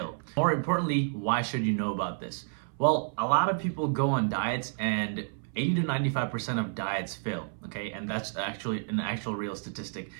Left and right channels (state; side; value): silent; left; 56 dB below the other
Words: More importantly, why should you know about this? Well, a lot of people go on diets and 80 to 95% of diets fail, okay? And that's actually an actual real statistic.